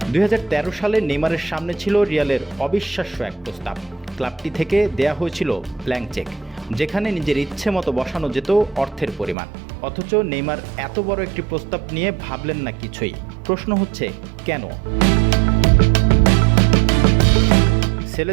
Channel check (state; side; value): drops out; left; at 9.3 s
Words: 2013 সালে নেইমারের সামনে ছিল রিয়ালের অবিশ্বাস্য এক প্রস্তাব। ক্লাবটি থেকে দেয়া হয়েছিল ব্ল্যাঙ্ক চেক, যেখানে নিজের ইচ্ছে মতো বসানো যেত অর্থের পরিমাণ। অথচ নেইমার এত বড় একটি প্রস্তাব নিয়ে ভাবলেন না কিছুই। প্রশ্ন হচ্ছে কেন?